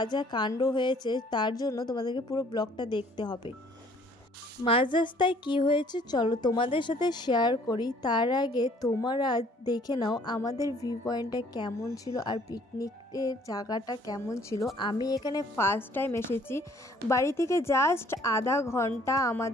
যা কাণ্ড হয়েছে তার জন্য তোমাদেরকে পুরো ব্লগটা দেখতে হবে। মাঝ রাস্তায় কী হয়েছে চলো তোমাদের সাথে শেয়ার করি। তার আগে তোমরা দেখে নাও আমাদের ভিউ পয়েন্টটা কেমন ছিল আর পিকনিকের জায়গাটা কেমন ছিল। আমি এখানে ফার্স্ট টাইম এসেছি, বাড়ি থেকে জাস্ট আধা ঘন্টা,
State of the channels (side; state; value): both; normal; correlation 0.58